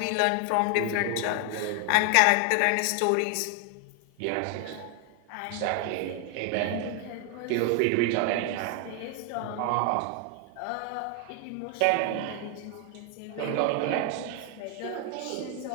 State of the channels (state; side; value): different; both; correlation 0.00